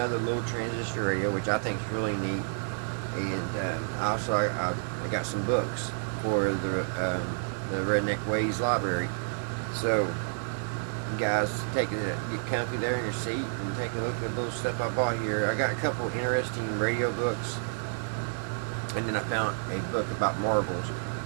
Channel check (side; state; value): left; silent; 58 dB below the other